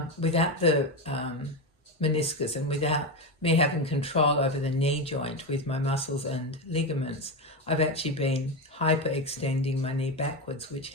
without the meniscus and without me having control over the knee joint with my muscles and ligaments, I've actually been hyperextending my knee backwards, which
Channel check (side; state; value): both; normal; correlation 0.14